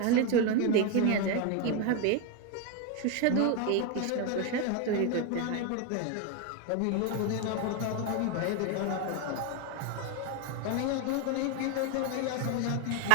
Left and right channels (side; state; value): both; different; correlation 0.01